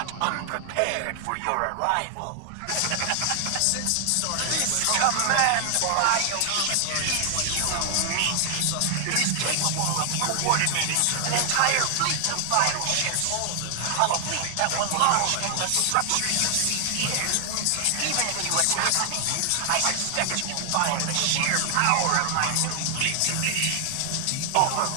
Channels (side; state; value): both; different; correlation 0.00